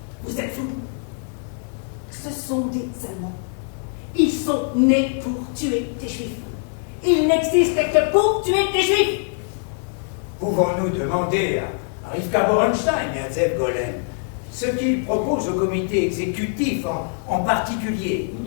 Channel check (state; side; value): silent; right; 57 dB below the other